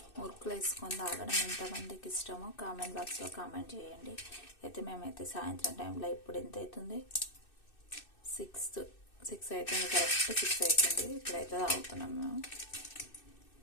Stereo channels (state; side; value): late; right; 2.6 ms